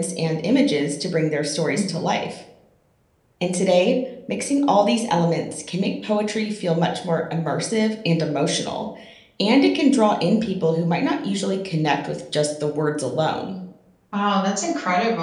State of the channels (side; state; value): both; identical; correlation 1.00